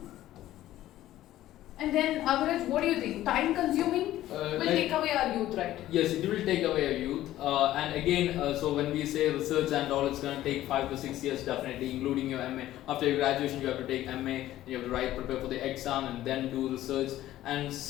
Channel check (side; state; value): right; quieter; 14.2 dB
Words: And then Agaraj, what do you think? Time consuming will take away our youth, right? Yes, it will take away our youth. And again, so when we say research and all, it's going to take 5 to 6 years definitely, including your MA. After your graduation, you have to take MA, you have to prepare for the exam, and then do research. And